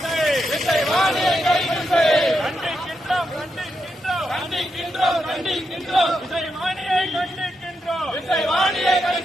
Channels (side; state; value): both; normal; correlation 0.84